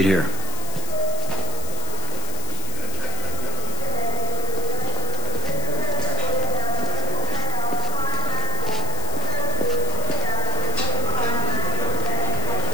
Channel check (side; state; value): left; noise; hiss, 9 dB below the sound